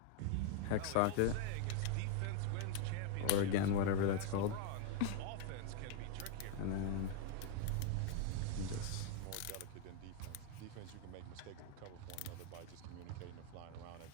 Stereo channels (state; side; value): different; both; correlation 0.00